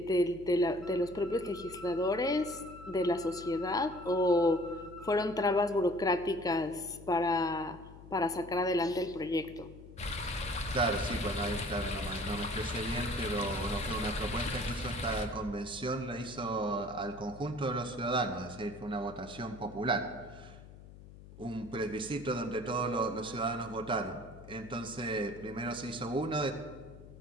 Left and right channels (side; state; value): left; noise; hum, 18 dB below the sound